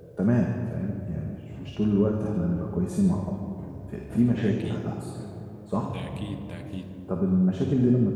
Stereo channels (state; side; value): identical; both; correlation 1.00